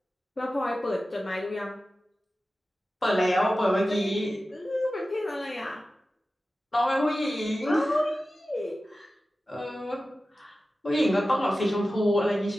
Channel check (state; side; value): normal; both; correlation 0.95